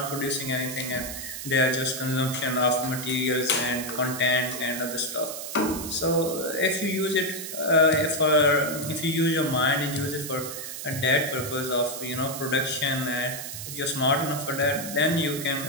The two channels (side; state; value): right; noise; hiss, 8 dB below the sound